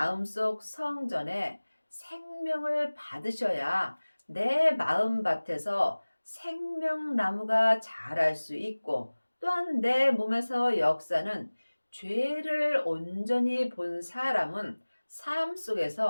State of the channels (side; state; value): both; inverted; correlation -1.00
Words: 성전에 생명을 받으셔야 내 마음밭에서 생명나무가 자랄 수 있고 또한 내 몸에서 역사는 죄를 온전히 본 사람은 삶